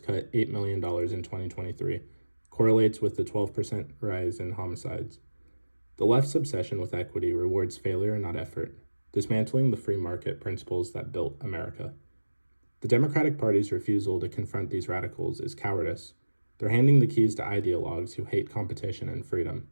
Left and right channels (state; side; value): inverted; both; correlation -1.00